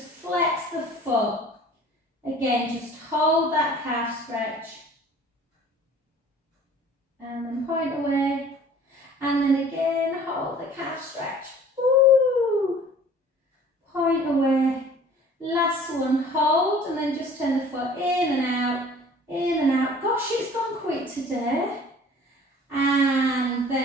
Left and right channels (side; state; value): both; normal; correlation 0.49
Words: flex the foot. Again, just hold that calf stretch. And then point away. And then again, hold the calf stretch. Woo! Point away. Last one, hold, and then just turn the foot in and out, in and out. Gosh, it's gone quick today. And